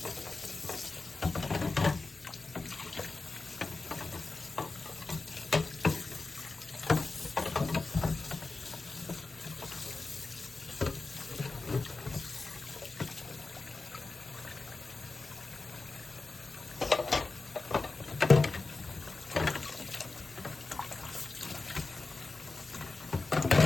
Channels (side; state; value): right; quieter; 3.7 dB